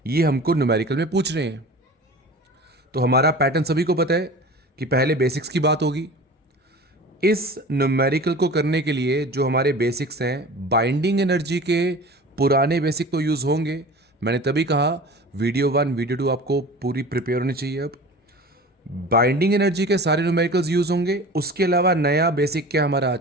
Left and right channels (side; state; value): both; normal; correlation 0.38